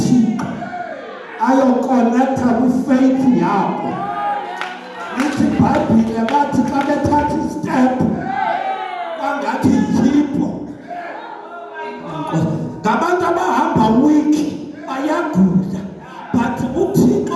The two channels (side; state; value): both; identical; correlation 1.00